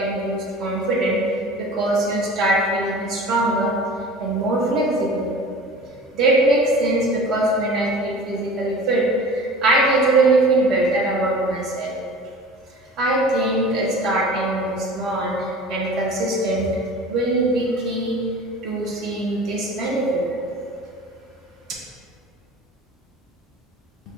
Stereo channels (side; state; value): both; normal; correlation 0.41